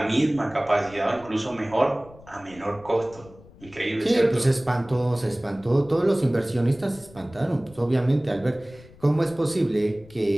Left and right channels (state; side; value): noise; left; rumble, 22 dB below the sound